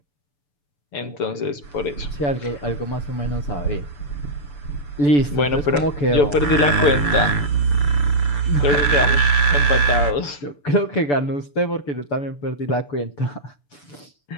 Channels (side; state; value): right; late; 6.9 ms